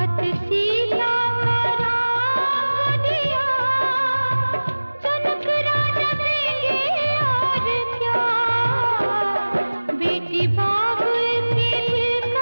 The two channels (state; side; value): inverted; both; correlation -1.00